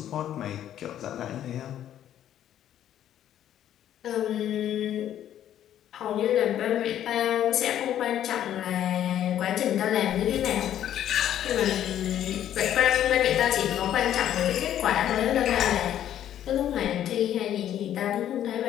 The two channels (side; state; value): right; quieter; 11.1 dB